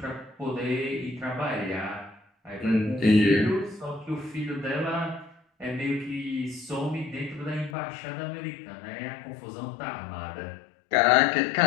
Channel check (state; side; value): drops out; right; at 7.7 s